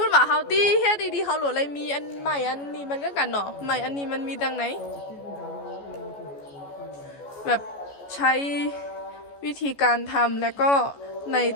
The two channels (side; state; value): right; late; 14 ms